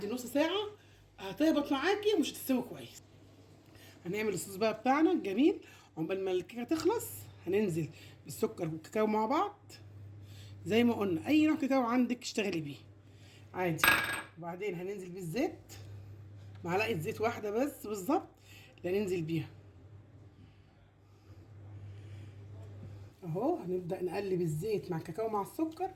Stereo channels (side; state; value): both; identical; correlation 1.00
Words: نص ساعه هتهبط معاكي ومش هتستوي كويس. هنعمل الصوص بقى بتاعنا الجميل. عقبال ما الكيكه تخلص هننزل بالسكر والكاكاو مع بعض زي ما قلنا. اي نوع كاكاو عندك اشتغلي بيه عادي. وبعدين هننزل بالزيت، معلقه زيت واحده بس بالظبط اللي هننزل بيها اهو. هنبدا نقلب الزيت مع الكاكاو مع السكر.